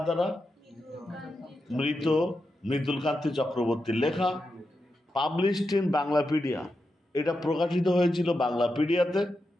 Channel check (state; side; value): normal; both; correlation 0.88